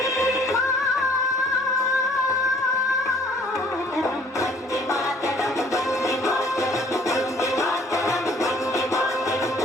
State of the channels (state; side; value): normal; both; correlation 0.56